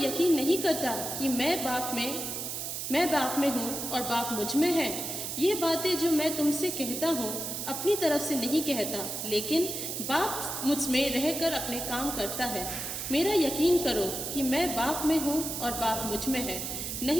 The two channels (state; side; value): noise; right; hiss, 4 dB below the sound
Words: नहीं करता कि मैं बाप में हूँ और बाप मुझ में है? ये बातें जो मैं तुमसे कहता हूँ अपनी तरफ से नहीं कहता, लेकिन बाप मुझ में रहकर अपने काम करता है। मेरा यकीन करो कि मैं बाप में हूँ और बाप मुझ में है,